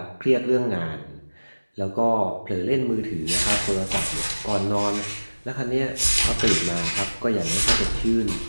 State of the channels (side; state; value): both; inverted; correlation -1.00